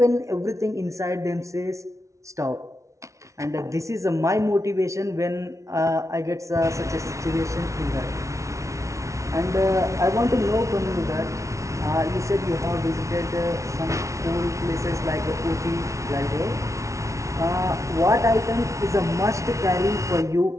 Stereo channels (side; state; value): left; late; 0.14 ms